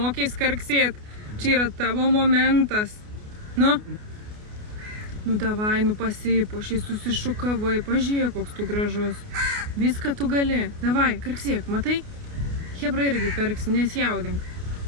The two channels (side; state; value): left; late; 28 ms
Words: karksėt? Čia yra tavo momentas. Nu, davai, pasipuošiai, susišukavai, pažiūrėk, koks tu gražus. Viską tu gali. Davai, karksėk, matai? Hebra irgi karksi, nesjaudink.